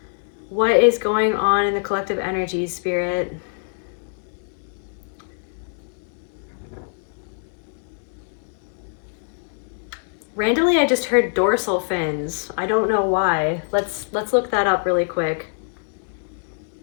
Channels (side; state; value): right; silent; 63 dB below the other